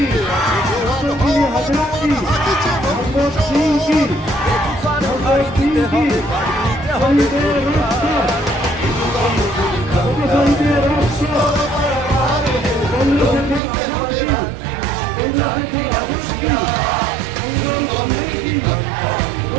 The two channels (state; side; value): drops out; left; at 13.6 s